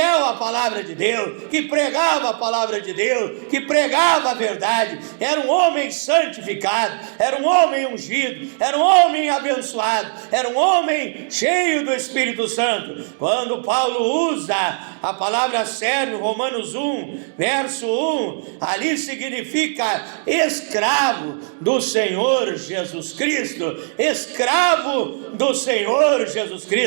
à palavra de Deus, que pregava a palavra de Deus, que pregava a verdade. Era um homem santificado, era um homem ungido, era um homem abençoado, era um homem cheio do Espírito Santo. Quando Paulo usa a palavra servo, Romanos 1, verso 1, ali significa escravo do Senhor Jesus Cristo, escravo do Senhor Jesus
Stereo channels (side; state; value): left; silent; digital silence